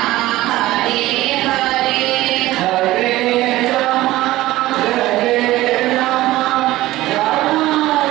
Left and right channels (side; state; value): left; quieter; 16.8 dB